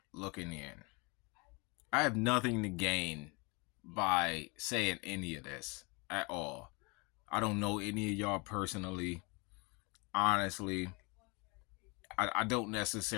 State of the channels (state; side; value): quieter; right; 29.6 dB